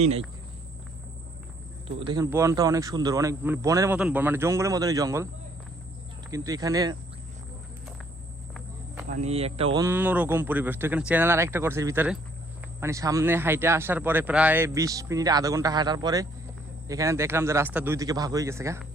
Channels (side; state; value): both; normal; correlation 0.65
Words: নাই। তো দেখেন বনটা অনেক সুন্দর, অনেক মানে বনের মতন বন, মানে জঙ্গলের মতনই জঙ্গল, কিন্তু এখানে মানে একটা অন্যরকম পরিবেশ। তো এখানে চ্যানেল আর একটা করছে ভিতরে, মানে সামনে হাইটে আসার পরে প্রায় 20 মিনিট আধা ঘন্টা হাঁটার পরে এখানে দেখলাম যে রাস্তা দুই দিকে ভাগ হয়ে গেছে।